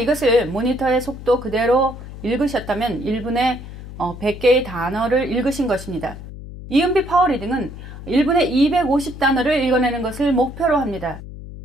모니터의 속도 그대로 읽으셨다면 1분에 100개의 단어를 읽으신 것입니다. 이은비 파워리딩은 1분에 250단어를 읽어내는 것을 목표로 합니다.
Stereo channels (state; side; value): noise; left; hum, 13 dB below the sound